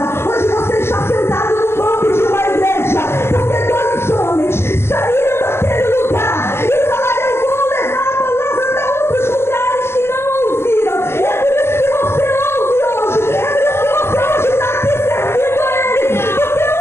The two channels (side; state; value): right; late; 0.12 ms